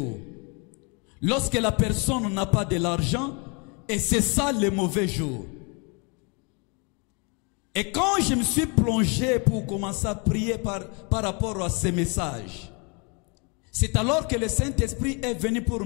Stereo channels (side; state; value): right; quieter; 32.9 dB